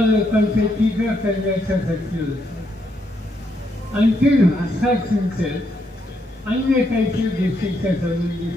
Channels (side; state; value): both; normal; correlation 0.77